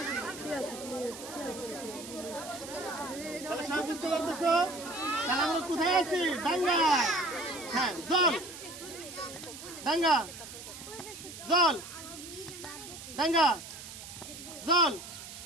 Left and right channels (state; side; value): noise; right; hiss, 12 dB below the sound